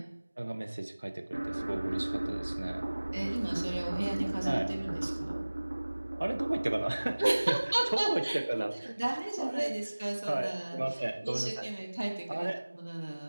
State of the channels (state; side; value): inverted; both; correlation -1.00